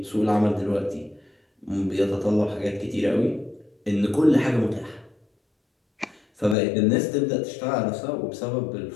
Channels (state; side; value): drops out; right; at 6.6 s